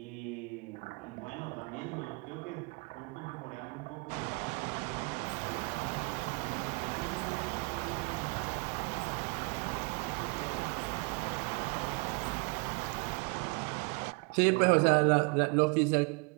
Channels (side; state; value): left; quieter; 31.6 dB